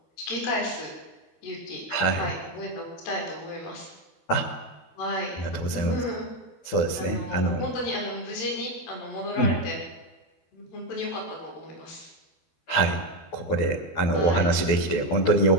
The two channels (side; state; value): right; late; 12 ms